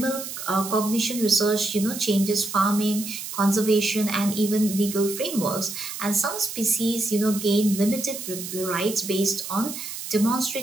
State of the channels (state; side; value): noise; right; hiss, 8 dB below the sound